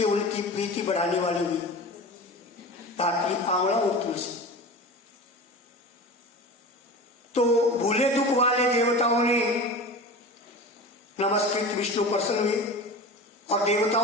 उनकी प्रीति बढ़ाने वाली हुई। धात्री, आंवला और तुलसी। तो भूले दुख वाले देवताओं ने नमस्कृत विष्णु प्रसन्न हुए और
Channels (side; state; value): both; normal; correlation 0.32